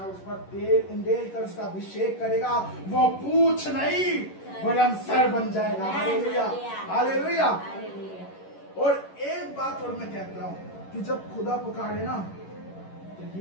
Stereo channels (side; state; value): right; late; 11 ms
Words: उस पर तेल उंडेल कर उसका अभिषेक करेगा, वो पूछ नहीं वरन सर बन जाएगा। हालेलुया। हालेलुया। और एक बात और मैं कहता हूँ कि जब खुदा पुकारे ना तो